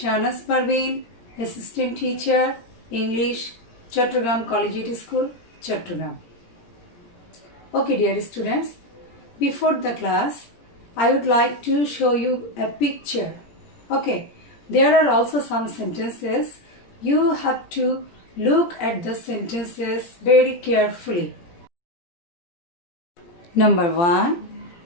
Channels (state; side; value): late; right; 17 ms